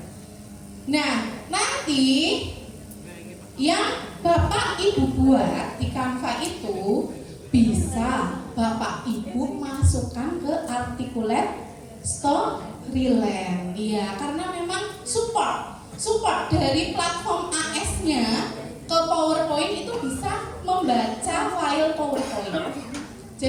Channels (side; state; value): both; identical; correlation 1.00